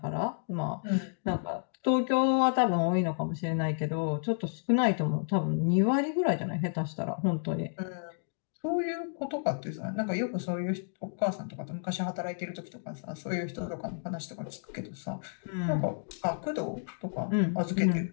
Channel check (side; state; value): right; silent; digital silence